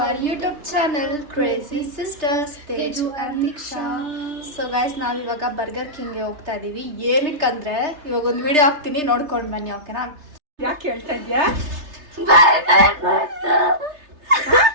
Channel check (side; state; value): left; late; 3.3 ms